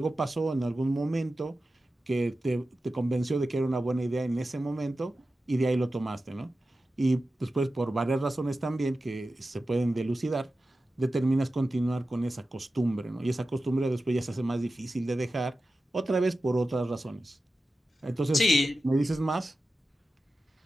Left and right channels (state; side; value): normal; both; correlation 0.93